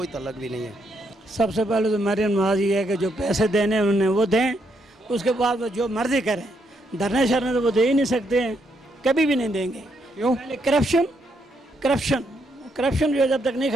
تعلق بھی نہیں ہے. سب سے پہلے تو مریم نواز یہ ہے کہ جو پیسے دینے انہوں نے وہ دیں، اس کے بعد وہ جو مرضی کریں. دھرنے شرنے تو وہ دے ہی نہیں سکتے ہیں، کبھی بھی نہیں دیں گے. کیوں؟ پہلے کرپشن جو جب تک نہیں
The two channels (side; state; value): both; normal; correlation 0.76